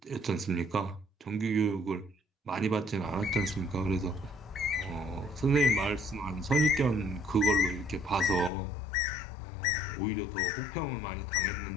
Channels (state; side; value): drops out; right; at 8.5 s